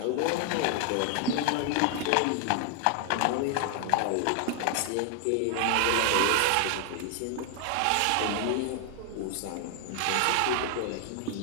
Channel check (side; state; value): both; different; correlation 0.00